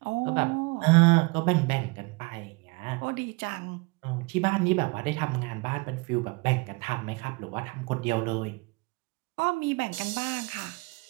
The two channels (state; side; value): quieter; left; 27.1 dB